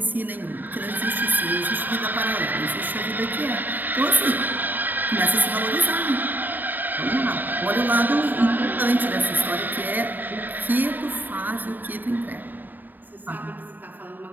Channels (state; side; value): late; left; 0.089 ms